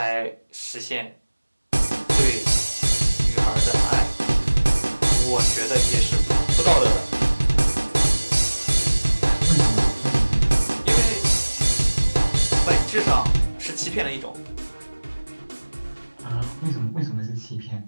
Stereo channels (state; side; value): inverted; both; correlation -1.00